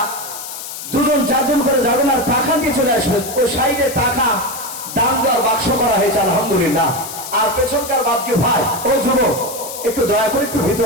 দুজন চারজন করে যাবেন আর টাকা দিয়ে চলে আসবেন। ওই সাইডে টাকা দান দেওয়ার বাক্স করা হয়েছে আলহামদুলিল্লাহ। আর পেছনকার ভাবছি ভাই ও যুবক একটু দয়া করে একটু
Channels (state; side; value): noise; left; hiss, 10 dB below the sound